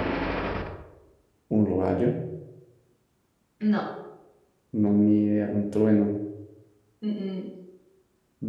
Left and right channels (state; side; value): identical; both; correlation 1.00